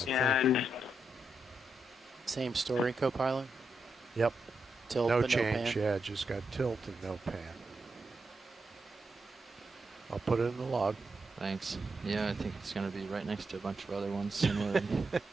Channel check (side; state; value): both; normal; correlation 0.83